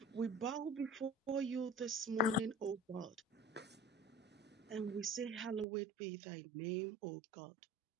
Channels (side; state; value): left; drops out; at 5.7 s